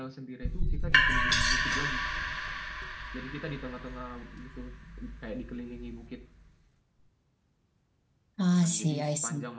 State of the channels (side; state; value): both; identical; correlation 1.00